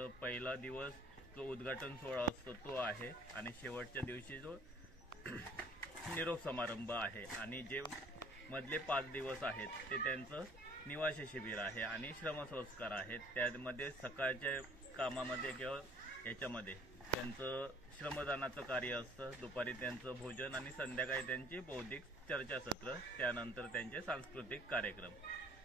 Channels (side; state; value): right; noise; hum, 23 dB below the sound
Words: पहिला दिवस जो उद्घाटन सोहळा असतो तो आहे, आणि शेवटच्या दिवशी जो निरोप समारंभ आहे, आणि जे मधले 5 दिवस आहेत ते त्यांचं निवासी शिबिर आहे आणि श्रमसंस्कार आहेत। त्यामध्ये सकाळच्या कामामध्ये किंवा याच्यामध्ये त्यांचं श्रमदानाचं कार्य असतं, दुपारी त्यांचं भोजन आणि संध्याकाळी त्यांची बौद्धिक चर्चासत्र, त्यानंतर त्यांचे सांस्कृतिक कार्यक्रम।